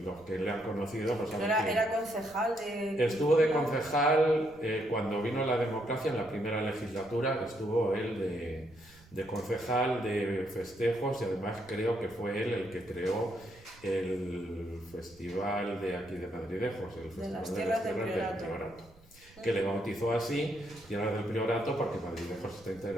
que le han conocido pues saben que era concejal de... Estuvo de concejal cuando vino la democracia en la primera legislatura, estuvo él de concejal de festejos y además creo que fue él el que creó el festival de aquí de Madridejos, el Festival de las Tierras del Priorato, que le bautizó así, Tierras del Priorato, porque Madridejos está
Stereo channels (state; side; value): noise; right; rumble, 25 dB below the sound